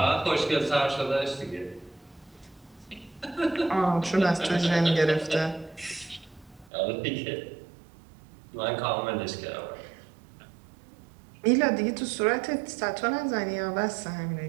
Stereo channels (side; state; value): left; drops out; at 6.7 s